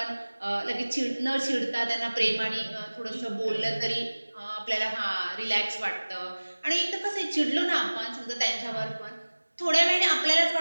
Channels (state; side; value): inverted; both; correlation -1.00